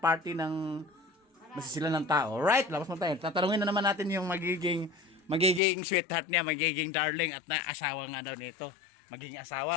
ng masisila ng tao. Alright? Labas na tayo. Tatanungin na naman natin yung magiging sweetheart niya, magiging darling at na asawa nga daw nito. Magiging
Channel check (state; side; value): drops out; right; at 5.6 s